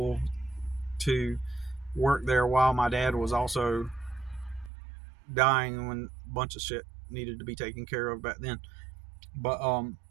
to work there while my dad was also dying, when a bunch of shit needed to be taken care of back then. But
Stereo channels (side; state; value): left; drops out; at 4.7 s